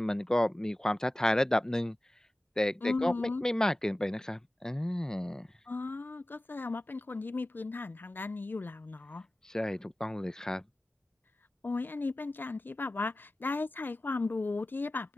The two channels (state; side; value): normal; both; correlation 0.96